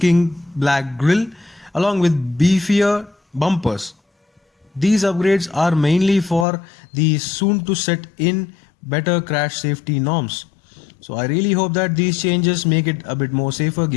black grille along with beefier bumpers. These upgrades are mainly for the soon to set in better crash safety norms. So I really hope that these changes make it a bit more safer,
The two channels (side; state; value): right; drops out; at 6.5 s